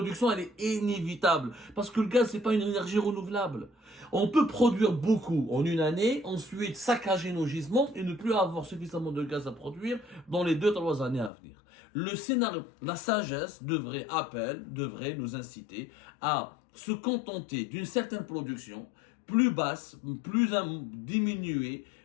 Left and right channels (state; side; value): drops out; right; at 11.3 s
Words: elle est inévitable. Parce que le gaz, c'est pas une énergie renouvelable. On peut produire beaucoup en une année, ensuite saccager nos gisements et ne plus avoir suffisamment de gaz à produire dans les 2-3 années à venir. Le scénario, la sagesse devrait nous inciter à se contenter d'une certaine production plus basse, plus diminuée,